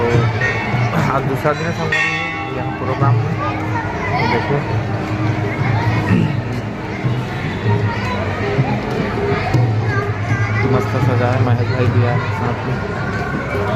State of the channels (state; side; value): identical; both; correlation 1.00